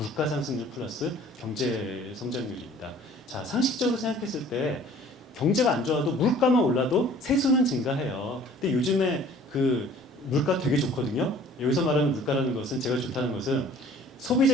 상승률 플러스 경제 성장률입니다. 자 상식적으로 생각했을 때 경제가 안 좋아도 물가만 올라도 세수는 증가해요. 근데 요즘에 그 물가 되게 좋거든요. 여기서 말하는 물가라는 것은 제가 좋다는 것은 소비자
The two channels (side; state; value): both; normal; correlation 0.51